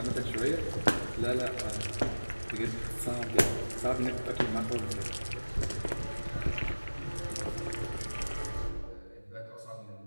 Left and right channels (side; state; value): both; inverted; correlation -1.00